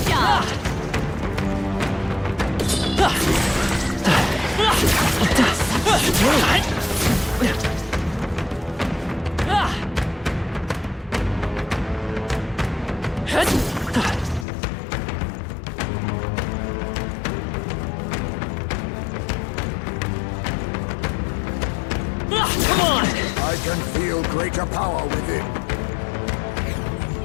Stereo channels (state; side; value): drops out; right; at 14.5 s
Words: job. come on! I can feel greater power within.